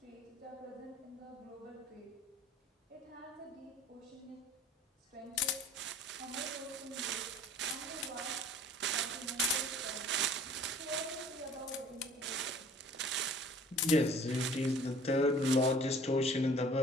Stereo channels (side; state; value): both; normal; correlation 0.50